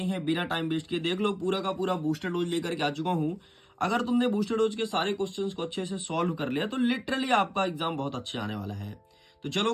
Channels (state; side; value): identical; both; correlation 1.00